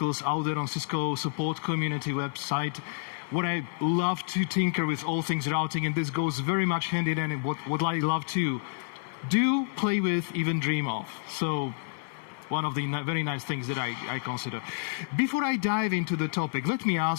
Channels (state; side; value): silent; right; 56 dB below the other